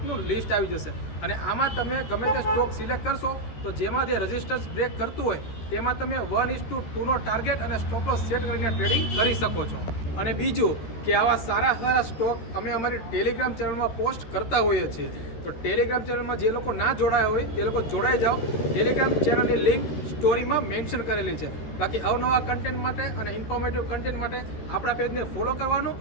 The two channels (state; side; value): late; right; 14 ms